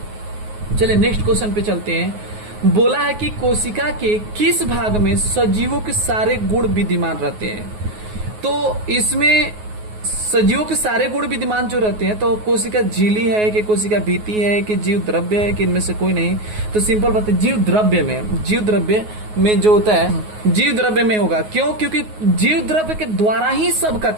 चलिए नेक्स्ट क्वेश्चन पे चलते हैं। बोला है कि कोशिका के किस भाग में सजीवों के सारे गुण विद्यमान रहते हैं। तो इसमें सजीवों के सारे गुण विद्यमान जो रहते हैं, तो कोशिका झिल्ली है कि कोशिका भित्ति है कि जीव द्रव्य है कि इनमें से कोई नहीं। तो सिंपल बात है, जीव द्रव्य में जो होता है जीव द्रव्य में होगा। क्यों? क्योंकि जीव द्रव्य के द्वारा ही सबका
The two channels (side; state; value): left; late; 9.5 ms